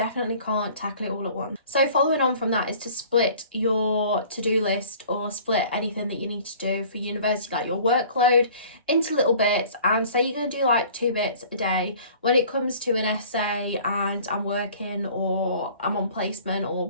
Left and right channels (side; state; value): both; inverted; correlation -0.49